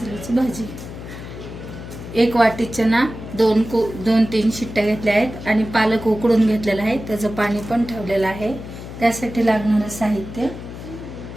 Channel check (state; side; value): noise; left; hum, 11 dB below the sound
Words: भाजी। 1 वाटी चना, 2-3 शिट्ट्या घेतल्या आहेत आणि पालक उकडून घेतलेला आहे, त्याचं पाणी पण ठेवलेलं आहे। त्यासाठी लागणारं साहित्य